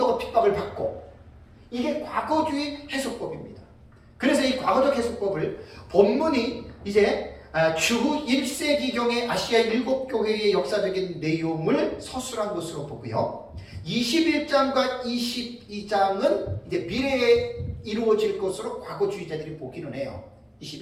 핍박을 받고 이게 과거주의 해석법입니다. 그래서 이 과거적 해석법을 본문이 이제 주후 1세기경의 아시아 7교회의 역사적인 내용을 서술한 것으로 보고요. 21장과 22장은 이제 미래에 이루어질 것으로 과거주의자들이 보기는 해요.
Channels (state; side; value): identical; both; correlation 1.00